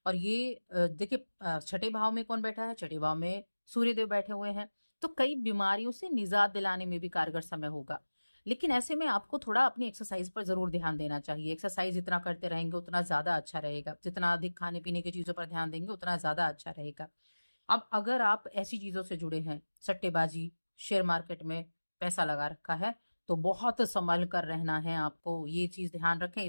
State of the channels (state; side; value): inverted; both; correlation -1.00